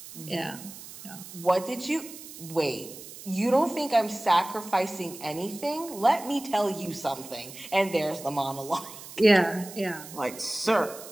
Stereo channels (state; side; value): noise; right; hiss, 15 dB below the sound